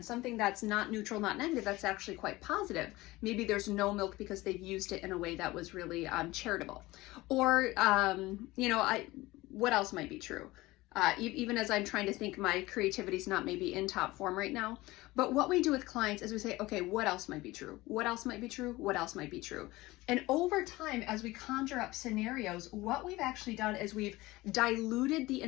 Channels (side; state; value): right; quieter; 19.6 dB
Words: something that's not neutral, not negative, that's actually quite positive. Maybe there's no milk because they've used it in a way that was really charitable. Or, what else might be true? even as I'm trying to think, my creativity is not maybe in top form right now. But what we do with clients is we say, okay, what else might be true? What else might be true? What else might be true? And over time, as we conjure up scenarios, what we've actually done is we've diluted the